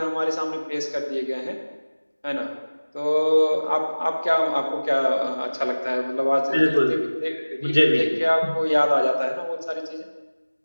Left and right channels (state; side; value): inverted; both; correlation -1.00